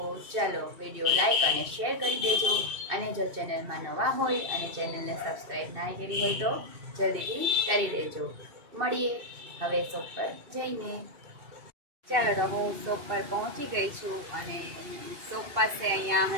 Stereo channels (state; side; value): late; left; 2.6 ms